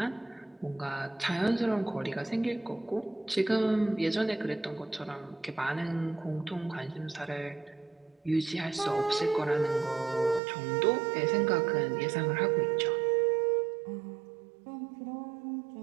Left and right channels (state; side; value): drops out; left; at 10.4 s